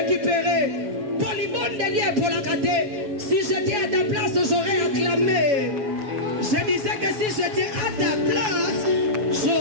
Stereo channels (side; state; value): left; late; 7.4 ms